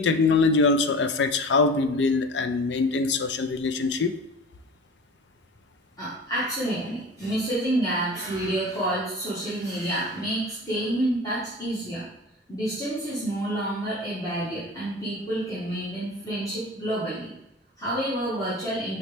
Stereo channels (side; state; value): both; normal; correlation 0.37